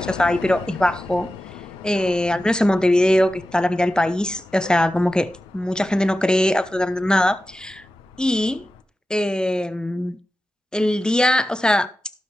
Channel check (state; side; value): normal; both; correlation 0.93